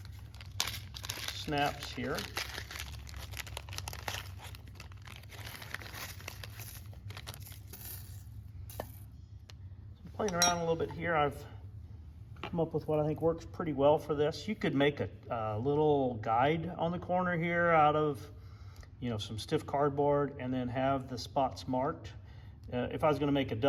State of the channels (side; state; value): both; identical; correlation 1.00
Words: snaps here. Playing around a little bit here, I've come up with what I think works pretty well for this. You could make a little guide on the corner here out of, you know, some stiff cardboard, and then have the spots marked. If I was going to make a